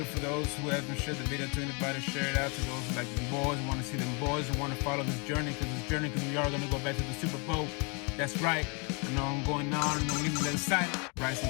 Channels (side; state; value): right; quieter; 33.0 dB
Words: for those who haven't shared the video to anybody. Share it out to those who like the boys, want to see them boys, and want to follow this journey, because we are going to go back to the Super Bowl. That's right. I know I'm going on and I'm getting a little excited. Write